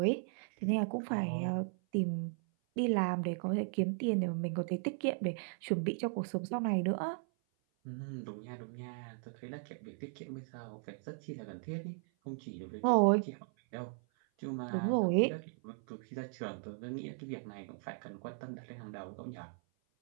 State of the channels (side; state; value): left; silent; 53 dB below the other